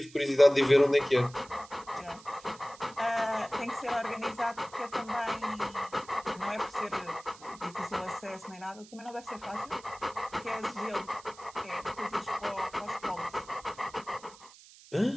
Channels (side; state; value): right; noise; hiss, 21 dB below the sound